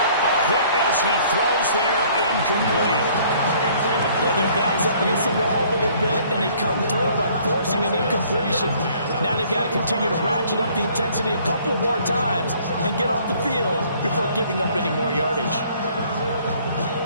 A hit as he throws there, incomplete. Well, their back's up against the wall a little bit, and they come through by forcing an incompletion. Now they've got to continue to ratchet up the intensity a couple more times and get off the field before giving up any more yardage.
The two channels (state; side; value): inverted; both; correlation -0.58